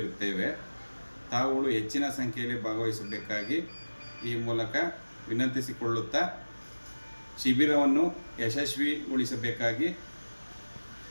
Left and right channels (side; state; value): both; inverted; correlation -1.00